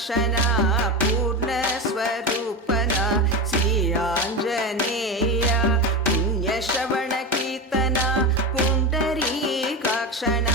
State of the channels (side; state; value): both; normal; correlation 0.20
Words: పూర్ణ స్వరూపన శ్రీ ఆంజనేయ పుణ్యశ్రవణ కీర్తన పుండరీకాక్షణ